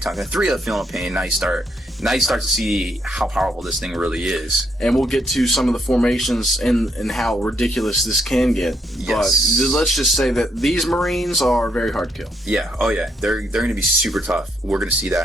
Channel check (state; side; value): normal; both; correlation 0.75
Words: talking 3-up Feel No Pain, now you start to see how powerful this thing really is. And we'll get to some of the formations and how ridiculous this can get. Yes. But let's just say that these Marines are very hard to kill. Yeah, oh yeah, they're going to be super tough. We're going to see that